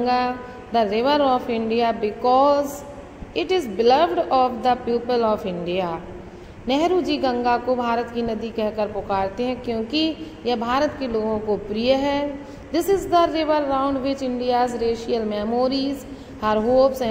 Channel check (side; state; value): both; identical; correlation 1.00